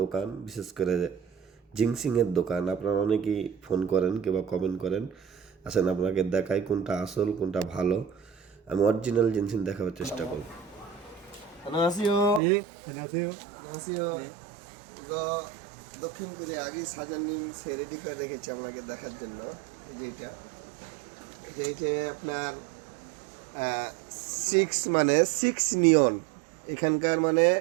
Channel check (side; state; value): left; drops out; at 12.4 s